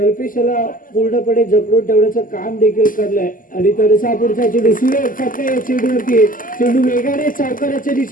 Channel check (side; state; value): right; late; 0.40 ms